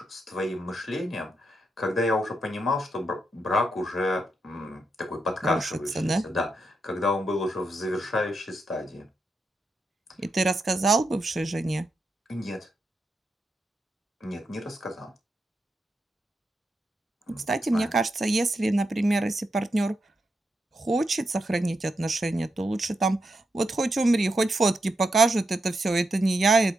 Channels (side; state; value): both; normal; correlation 0.84